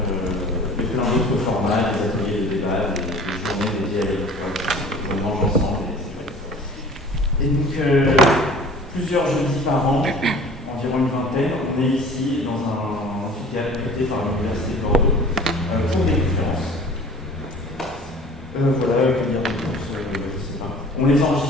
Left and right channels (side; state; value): both; normal; correlation 0.46